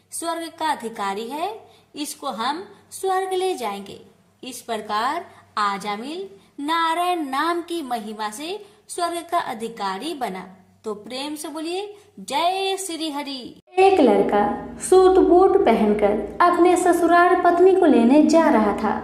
स्वर्ग का अधिकारी है, इसको हम स्वर्ग ले जाएंगे। इस प्रकार आजामिल नारायण नाम की महिमा से स्वर्ग का अधिकारी बना। तो प्रेम से बोलिए जय श्री हरि। एक लड़का सूट बूट पहनकर अपने ससुराल पत्नी को लेने जा रहा था।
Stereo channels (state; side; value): identical; both; correlation 1.00